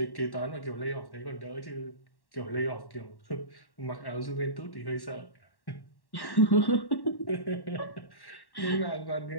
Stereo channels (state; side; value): late; right; 1.1 ms